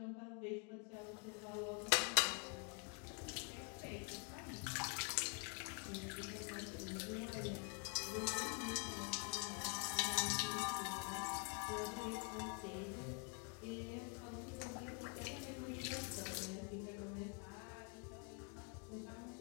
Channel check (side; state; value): right; quieter; 38.7 dB